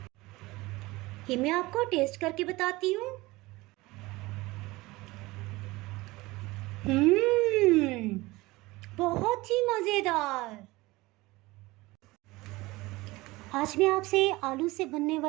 ये मैं आपको टेस्ट करके बताती हूँ। बहुत ही मज़ेदार। आज मैं आपसे आलू से बनने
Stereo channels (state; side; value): quieter; left; 20.8 dB